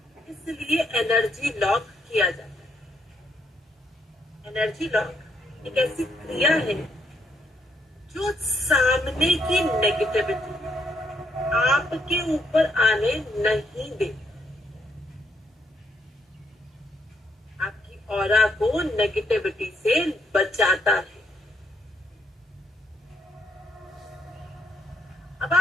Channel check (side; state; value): both; normal; correlation 0.74